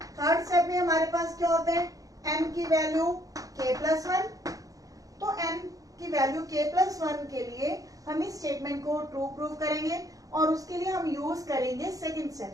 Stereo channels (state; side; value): late; left; 0.17 ms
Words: थर्ड स्टेप में हमारे पास क्या होता है, m की वैल्यू k प्लस 1, तो m की वैल्यू k प्लस 1 के लिए हम इस स्टेटमेंट को ट्रू प्रूव करेंगे और उसके लिए हम यूज करेंगे सेकेंड